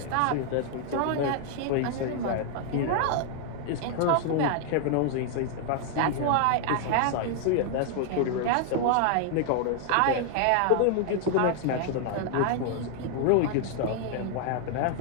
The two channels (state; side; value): different; both; correlation 0.00